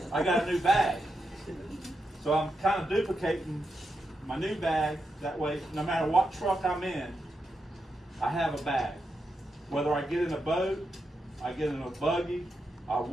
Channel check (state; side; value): normal; both; correlation 0.85